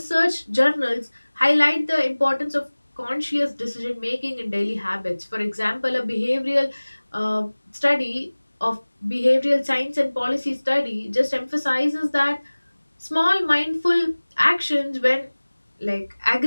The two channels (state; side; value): inverted; both; correlation -1.00